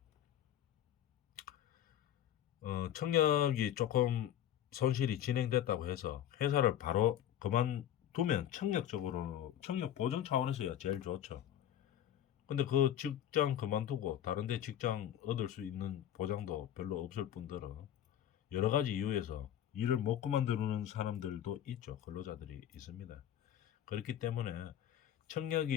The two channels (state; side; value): quieter; right; 11.0 dB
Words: 청력이 조금 손실이 진행됐다고 해서 회사를 바로 그만두면 청력 보존 차원에서야 제일 좋죠. 근데 그 직장 그만두고 다른 데 직장 얻을 수 있는 보장도 별로 없을 뿐더러 여러 가지 이유에서 일을 못 그만두는 사람들도 있죠. 근로자들이 있습니다. 그렇기 때문에